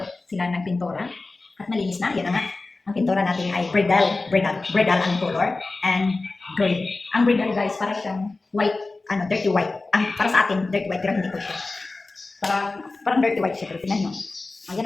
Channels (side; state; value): right; quieter; 3.4 dB